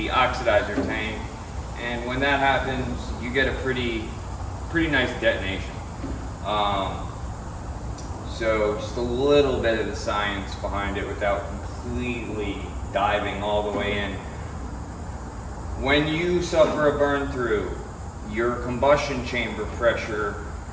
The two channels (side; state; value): both; identical; correlation 1.00